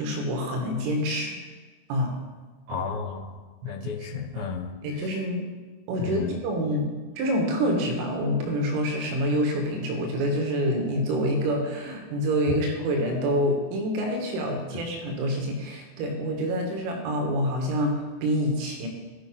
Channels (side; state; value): left; late; 24 ms